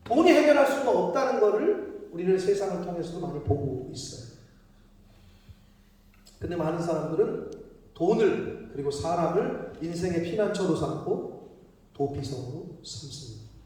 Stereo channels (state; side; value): identical; both; correlation 1.00